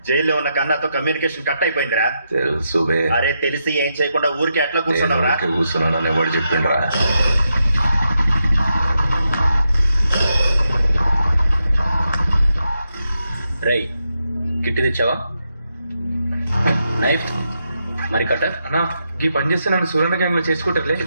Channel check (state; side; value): inverted; both; correlation -0.84